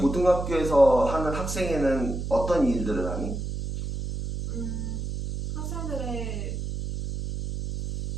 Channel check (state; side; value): noise; right; hum, 5 dB below the sound